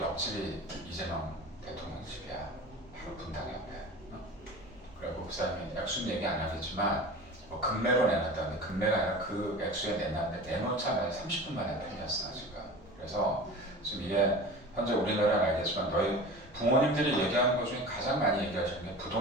이재명 대통령 집이야. 바로 분당 옆에. 그리고 그 사람이 액수는 얘기 안 하겠지만 뭐 금매로 내놨다는데, 금매가 아니라 그 액수에 내놨는데 내놓자마자 30분 만에 팔렸어 지금. 그래서 지금 이게 현재 우리나라는 알겠지만 너희 부모님들이 얘기하는 것 중에 가장 많이 얘기하시는 게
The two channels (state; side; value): normal; both; correlation 0.36